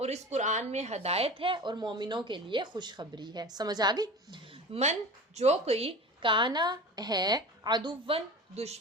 اس قرآن میں ہدایت ہے اور مومنوں کے لیے خوشخبری ہے۔ سمجھ آ گئی؟ من جو کوئی کانا ہے عدوًا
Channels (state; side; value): normal; both; correlation 0.34